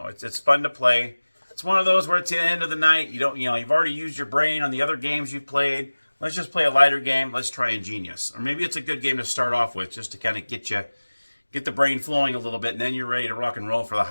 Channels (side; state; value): both; inverted; correlation -1.00